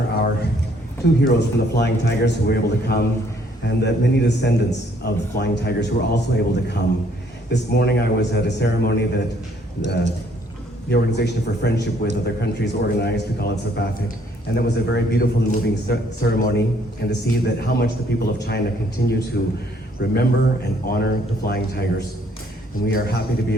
our two heroes from the Flying Tigers who were able to come, and the many descendants of the Flying Tigers who were also able to come. This morning I was at a ceremony that the Organization for Friendship with Other Countries organized. We call it SAPAFIC, and it was a very beautiful and moving ceremony, and to see that how much the people of China continue to remember and honor the Flying Tigers. And we are happy to be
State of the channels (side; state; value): both; normal; correlation 0.65